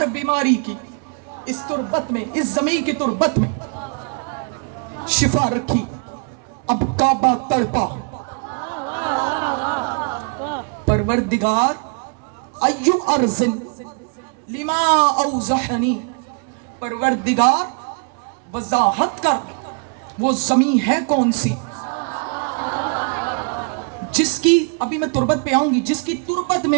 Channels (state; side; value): quieter; left; 39.6 dB